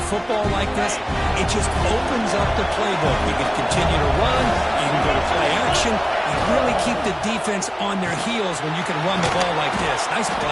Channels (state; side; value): identical; both; correlation 1.00